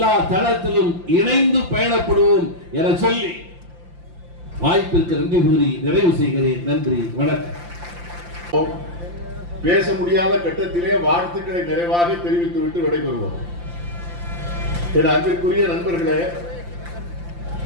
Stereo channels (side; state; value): left; late; 5.8 ms